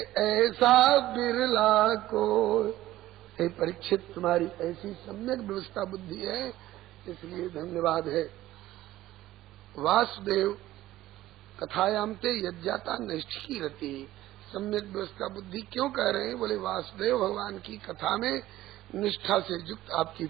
ऐसा बिरला को। हे परीक्षित, तुम्हारी ऐसी सम्यक व्यवस्था बुद्धि है, इसलिए धन्यवाद है। वासुदेव कथायाम ते यज्ञाता नैष्ठिकी रति। सम्यक व्यवस्था बुद्धि क्यों कह रहे हैं? बोले वासुदेव भगवान की कथा में निष्ठा से युक्त आपकी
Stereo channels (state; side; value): quieter; left; 15.2 dB